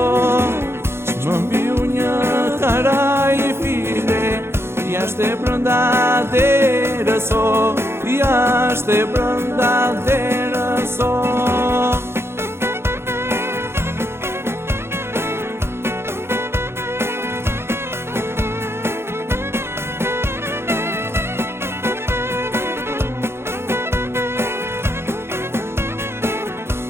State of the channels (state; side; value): late; left; 0.12 ms